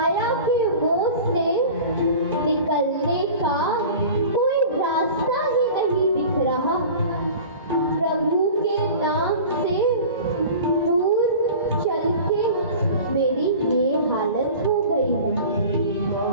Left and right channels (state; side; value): inverted; both; correlation -0.38